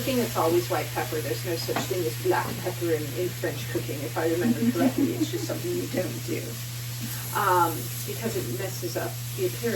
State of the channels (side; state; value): both; identical; correlation 1.00